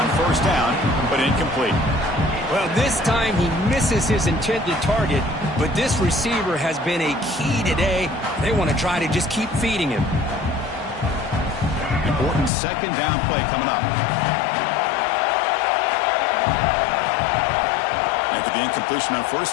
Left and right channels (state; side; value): drops out; right; at 12.5 s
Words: 1st down, but incomplete. Well, this time he misses his intended target, but this receiver has been a key today. They want to try to just keep feeding him. Important 2nd down play coming up. With the incompletion on